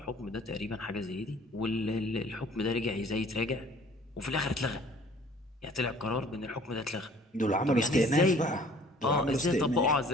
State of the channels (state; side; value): normal; both; correlation 0.53